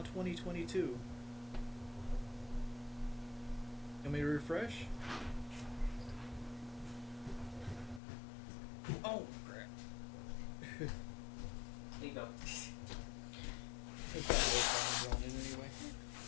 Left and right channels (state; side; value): drops out; right; at 8.0 s